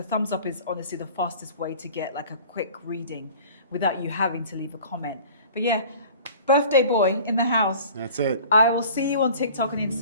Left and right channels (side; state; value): both; inverted; correlation -0.46